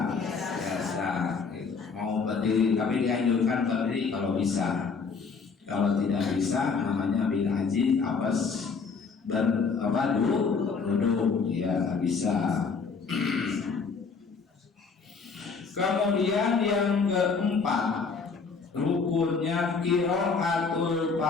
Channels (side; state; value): right; quieter; 5.1 dB